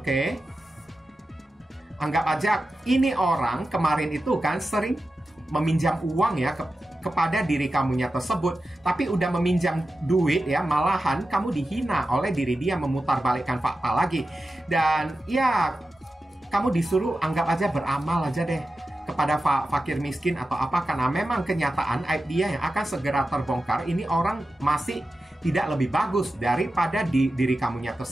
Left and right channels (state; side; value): normal; both; correlation 0.92